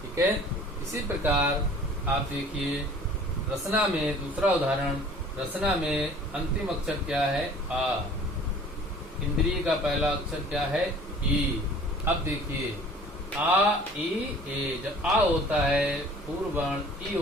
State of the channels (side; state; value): both; normal; correlation 0.49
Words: ठीक है, इसी प्रकार आप देखिए रसना में दूसरा उदाहरण, रसना में अंतिम अक्षर क्या है, आ, इंद्रिय का पहला अक्षर क्या है, ई। अब देखिए आ ई ए, जब आ होता है पूर्व वर्ण, ई